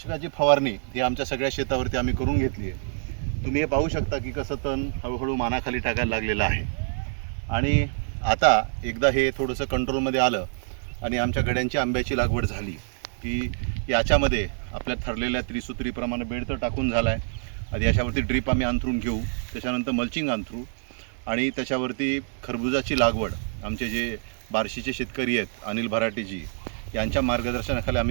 फवारणी ही आमच्या सगळ्या शेतावरती आम्ही करून घेतली आहे. तुम्ही हे पाहू शकता की कसं तण हळूहळू मानाखाली टाकायला लागलेलं आहे. आणि आता एकदा हे थोडंसं कंट्रोलमध्ये आलं आणि आमच्या गड्यांची आंब्याची लागवड झाली की याच्यामध्ये आपल्या ठरलेल्या त्रिसूत्रीप्रमाणे बेड तर टाकून झाला आहे. आधी याच्यावरती ड्रीप आम्ही अंथरून घेऊ, त्याच्यानंतर मल्चिंग अंथरू आणि त्याच्यावरती खरबुजाची लागवड आमचे जे बार्शीचे शेतकरी आहेत अनिल भराटेजी यांच्या मार्गदर्शनाखाली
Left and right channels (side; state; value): left; silent; digital silence